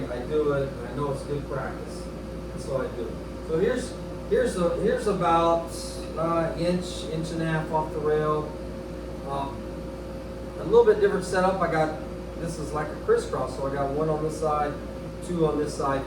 do it. I know it's good practice. That's why I do it. So here's about inch and a half off the rail. A little bit different setup. This is like a crisscross, so I got 1 on this side, 2 on this side,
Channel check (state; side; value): identical; both; correlation 1.00